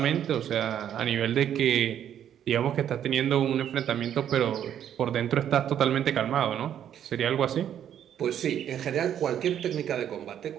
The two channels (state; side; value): quieter; left; 9.9 dB